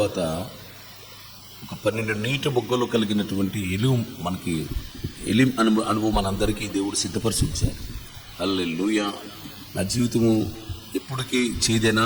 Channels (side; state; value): both; identical; correlation 1.00